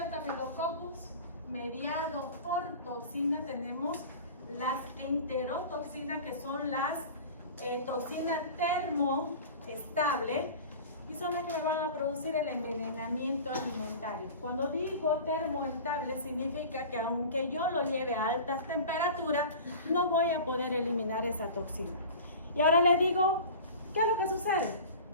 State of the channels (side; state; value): both; inverted; correlation -0.37